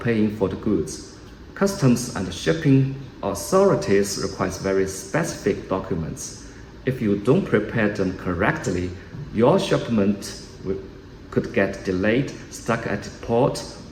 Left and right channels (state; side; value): identical; both; correlation 1.00